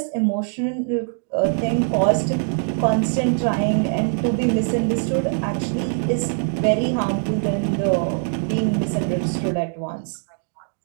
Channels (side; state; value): left; silent; 61 dB below the other